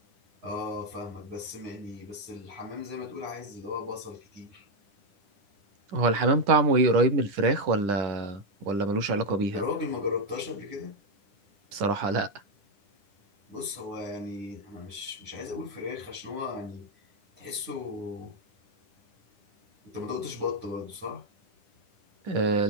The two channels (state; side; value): late; left; 10 ms